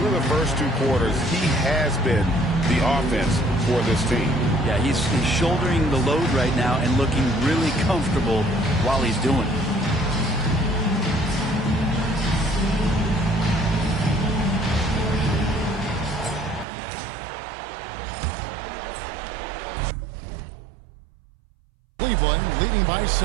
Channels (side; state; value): left; drops out; at 16.7 s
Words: the first 2 quarters, he has been the offense for this team. Yeah, he's shouldering the load right now and looking really comfortable while he's doing it. Cleveland leading by